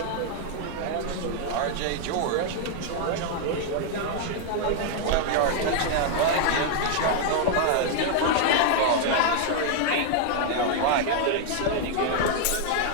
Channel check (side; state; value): both; different; correlation 0.00